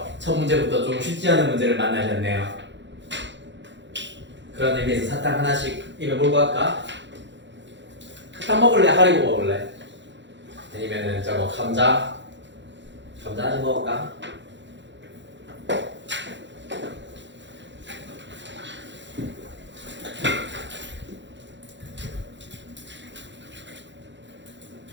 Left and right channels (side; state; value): left; late; 0.53 ms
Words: 첫 문제부터 좀 쉽지 않은 문제를 만나셨네요. 그런 의미에서 사탕 하나씩 입에 몰고 갈까? 탕 먹을래? 하리보 먹을래? 아니면은 저거 감자 좀 먹을까?